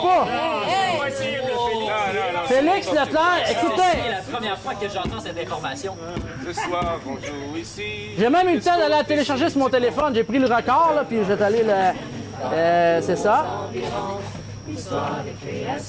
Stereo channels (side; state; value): both; identical; correlation 1.00